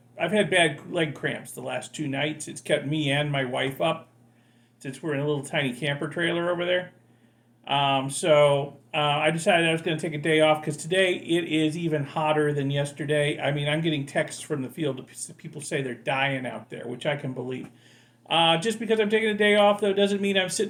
bad leg cramps the last 2 nights. It's kept me and my wife up since we're in a little tiny camper trailer over there. So I decided I was going to take a day off because today it is even hotter than yesterday. I mean, I'm getting texts from the field. People say they're dying out there, which I can believe. Just because I'm taking a day off, though, doesn't mean I'm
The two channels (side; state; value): both; identical; correlation 1.00